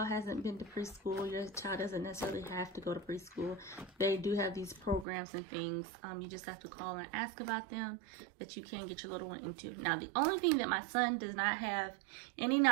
hasn't been to preschool, your child doesn't necessarily have to go to preschool. They do have these programs and things. You just have to call and ask about them that you can get your little one into. Now, the only thing that my son does not have any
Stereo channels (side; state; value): left; drops out; at 5.1 s